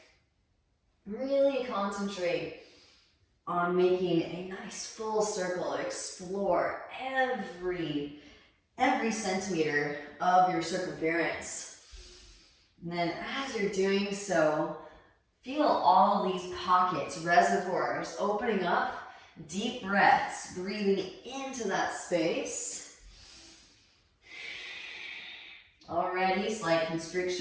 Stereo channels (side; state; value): both; identical; correlation 1.00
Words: Really concentrate on making a nice full circle. Explore every centimeter of your circumference. And then as you're doing so, feel all these pockets, reservoirs opening up. Deep breaths, breathing into that space. Already slight